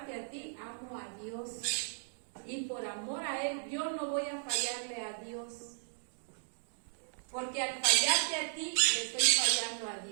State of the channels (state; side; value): silent; left; digital silence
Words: a ti, amo a Dios. Y por amor a Él, yo no voy a fallarle a Dios. Porque al fallarte a ti, le estoy fallando a